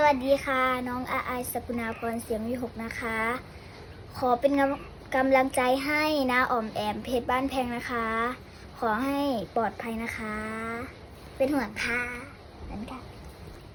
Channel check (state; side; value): identical; both; correlation 1.00